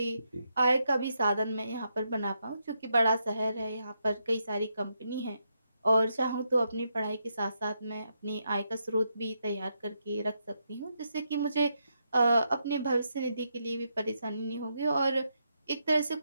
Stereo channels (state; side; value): inverted; both; correlation -0.81